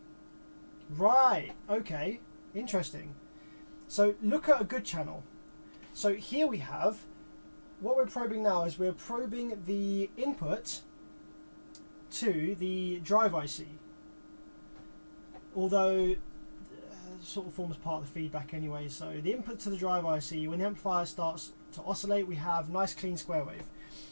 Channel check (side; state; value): both; inverted; correlation -1.00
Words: Right, okay, interesting. So look at a good channel. So here we have, what we're probing now is we're probing the input to the drive IC. Although sort of forms part of the feedback anyway. So the input to the drive IC, when the amplifier starts to oscillate, we have nice clean square wave.